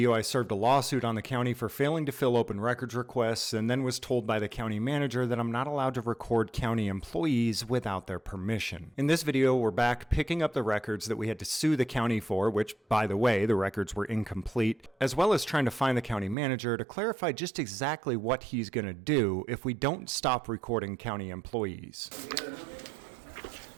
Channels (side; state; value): left; drops out; at 16.4 s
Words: I served a lawsuit on the county for failing to fill open records requests, and then was told by the county manager that I'm not allowed to record county employees without their permission. In this video, we're back picking up the records that we had to sue the county for, which, by the way, the records were incomplete, as well as trying to find the county manager to clarify just exactly what he's going to do if we don't stop recording county employees.